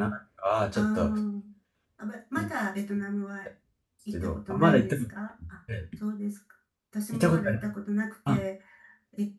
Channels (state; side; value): identical; both; correlation 1.00